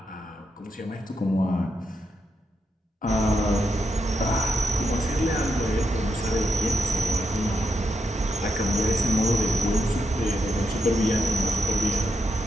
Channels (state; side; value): normal; both; correlation 0.83